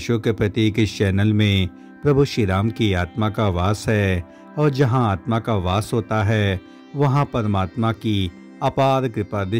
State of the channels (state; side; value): identical; both; correlation 1.00